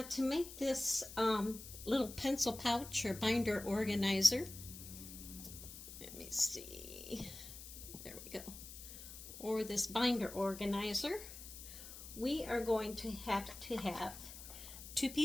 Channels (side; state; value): left; noise; hiss, 13 dB below the sound